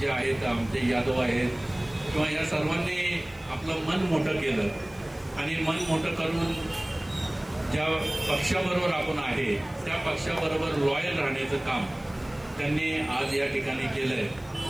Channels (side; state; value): left; noise; hiss, 26 dB below the sound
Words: आहेत आमचे यादव आहेत किंवा या सर्वांनी आपलं मन मोठं केलं आणि मन मोठं करून ज्या पक्षाबरोबर आपण आहे त्या पक्षाबरोबर लॉयल राहण्याचं काम त्यांनी आज या ठिकाणी केलंय.